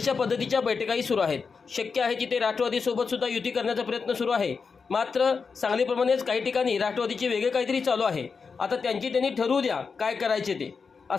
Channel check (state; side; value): quieter; right; 5.2 dB